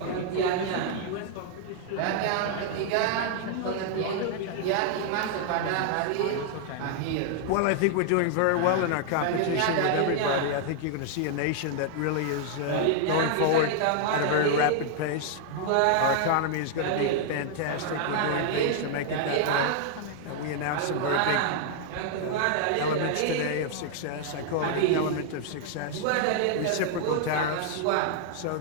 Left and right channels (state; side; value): different; both; correlation -0.01